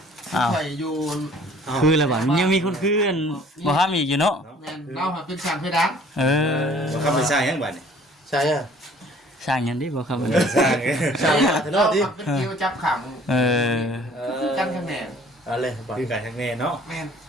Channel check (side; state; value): both; normal; correlation 0.54